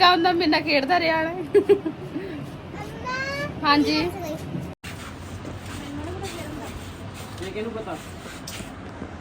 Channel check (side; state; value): both; identical; correlation 1.00